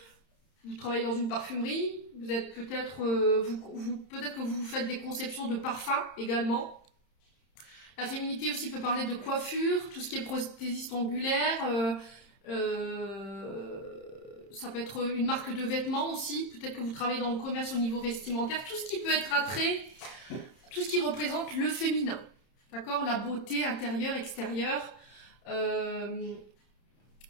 vous travaillez dans une parfumerie, vous êtes peut-être, peut-être que vous faites des conceptions de parfums également. La féminité aussi peut parler de coiffure, tout ce qui est prothésiste angulaire, ça peut être une marque de vêtements aussi, peut-être que vous travaillez dans le commerce au niveau vestimentaire, tout ce qui peut être attrait, tout ce qui représente le féminin, d'accord? La beauté intérieure, extérieure.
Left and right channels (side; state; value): right; late; 31 ms